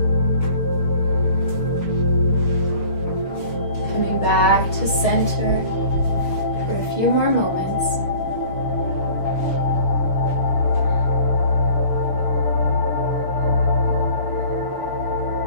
Coming back to center for a few more moments.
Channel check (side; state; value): right; late; 6.2 ms